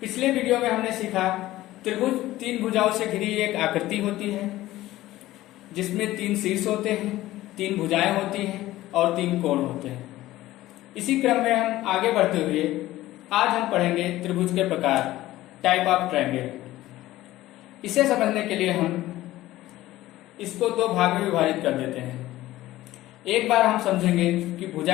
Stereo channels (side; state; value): right; quieter; 16.0 dB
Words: पिछले video में हमने सीखा त्रिभुज तीन भुजाओं से घिरी एक आकृति होती है जिसमें तीन शीर्ष होते हैं, तीन भुजाएं होती हैं और तीन कोण होते हैं। इसी क्रम में हम आगे बढ़ते हुए आज हम पढ़ेंगे त्रिभुज के प्रकार, टाइप ऑफ ट्रायंगल। इसे समझने के लिए हम इसको दो भाग में विभाजित कर देते हैं। एक बार हम समझेंगे कि भुजा